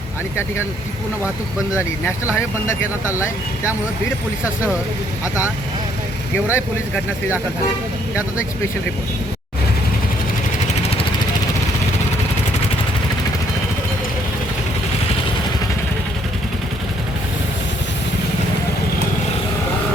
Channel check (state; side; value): normal; both; correlation 0.67